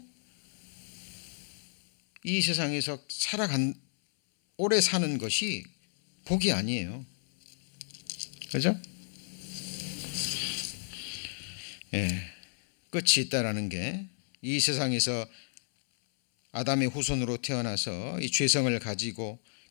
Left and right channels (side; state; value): right; silent; 57 dB below the other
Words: 이 세상에서 오래 사는 것이 복이 아니에요. 그죠? 끝이 있다라는 게 이 세상에서 아담의 후손으로 태어나서 이 죄성을 가지고